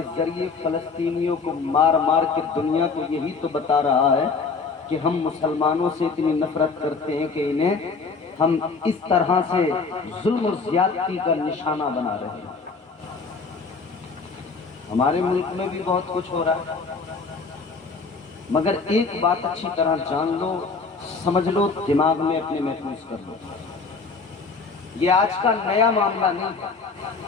ذریعے فلسطینیوں کو مار مار کے دنیا کو یہی تو بتا رہا ہے کہ ہم مسلمانوں سے اتنی نفرت کرتے ہیں کہ انہیں ہم اس طرح سے ظلم و زیادتی کا نشانہ بنا رہے ہیں۔ ہمارے ملک میں بھی بہت کچھ ہو رہا ہے، مگر ایک بات اچھی طرح جان لو، سمجھ لو، دماغ میں اپنے محفوظ کر لو، یہ آج کا نیا معاملہ نہیں ہے۔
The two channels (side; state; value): right; quieter; 4.6 dB